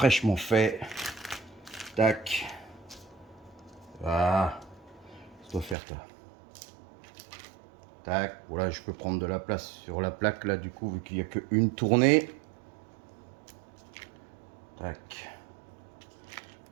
faits. Tac. Voilà. Ça doit faire ça. Tac. Voilà, je peux prendre de la place sur la plaque là, du coup, vu qu'il n'y a qu'une tournée. Tac.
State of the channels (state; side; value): drops out; left; at 5.8 s